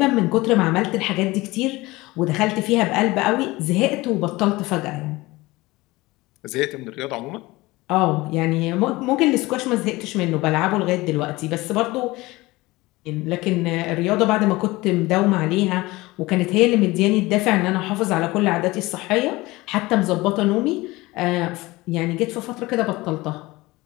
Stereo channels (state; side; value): quieter; right; 20.7 dB